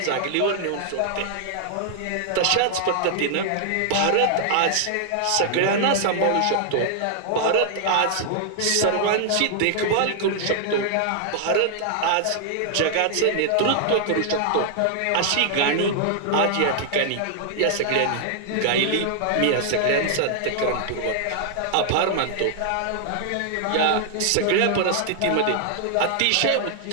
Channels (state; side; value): different; both; correlation 0.00